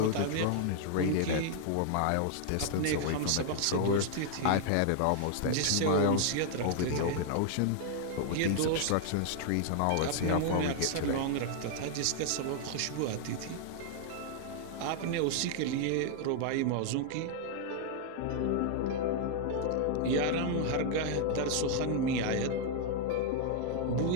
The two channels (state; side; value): different; both; correlation 0.00